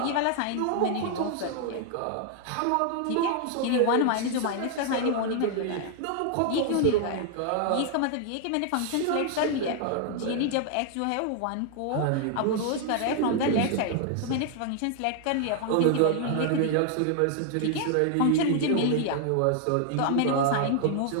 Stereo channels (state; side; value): different; both; correlation 0.00